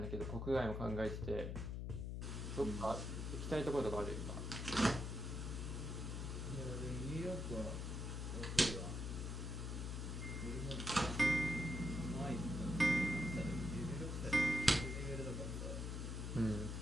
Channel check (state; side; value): noise; left; hum, 3 dB below the sound